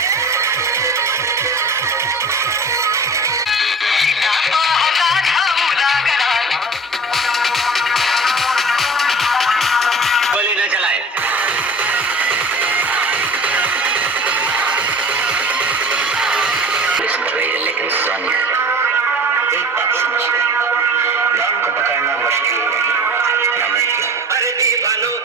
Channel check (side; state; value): both; normal; correlation 0.41